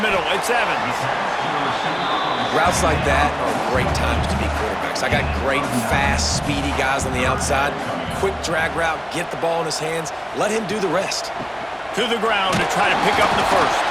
middle. It's Evans. Routes like that are great times to be quarterbacks. I got great, fast, speedy guys on the outside. Quick drag route, get the ball in his hands, let him do the rest. To the ground to try to pick up the first.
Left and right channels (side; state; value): both; identical; correlation 1.00